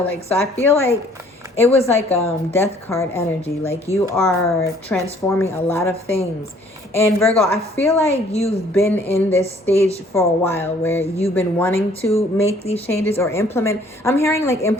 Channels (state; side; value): normal; both; correlation 0.59